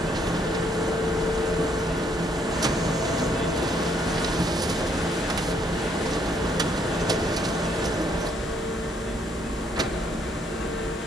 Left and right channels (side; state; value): both; normal; correlation 0.69